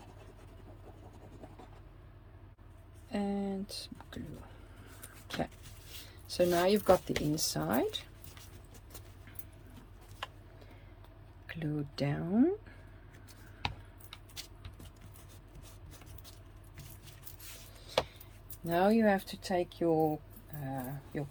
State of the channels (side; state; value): both; identical; correlation 1.00